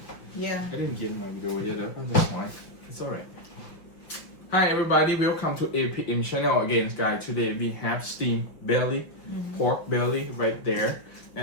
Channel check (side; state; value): right; late; 5.8 ms